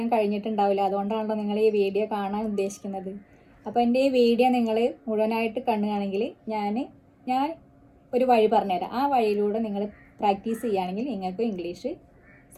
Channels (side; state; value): both; identical; correlation 1.00